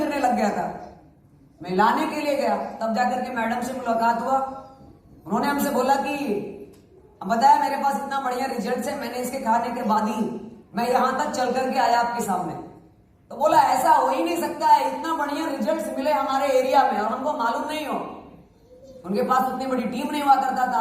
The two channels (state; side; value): identical; both; correlation 1.00